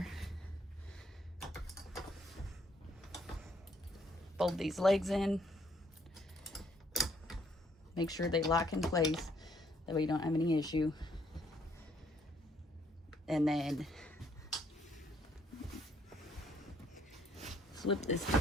Fold these legs in. Make sure they lock in place. That way you don't have any issue. And then flip this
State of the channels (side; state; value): both; normal; correlation 0.68